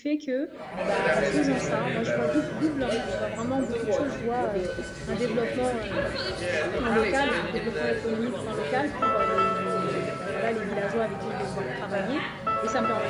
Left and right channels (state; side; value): identical; both; correlation 1.00